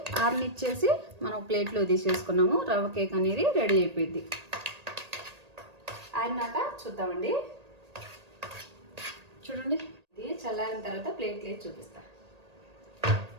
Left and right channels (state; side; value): late; left; 1.8 ms